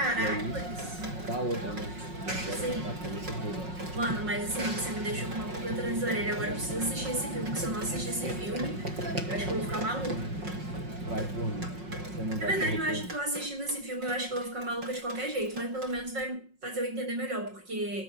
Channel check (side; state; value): left; late; 5.5 ms